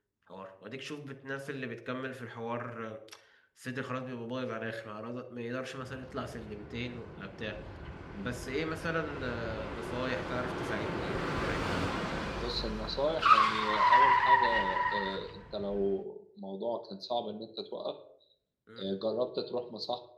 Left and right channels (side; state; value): both; identical; correlation 1.00